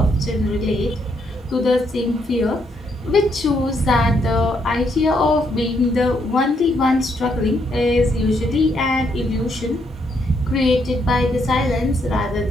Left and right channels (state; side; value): normal; both; correlation 0.75